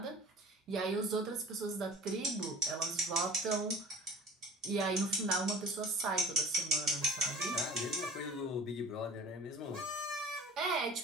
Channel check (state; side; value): normal; both; correlation 0.42